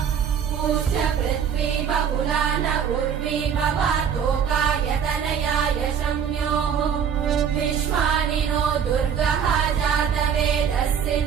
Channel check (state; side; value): quieter; left; 7.7 dB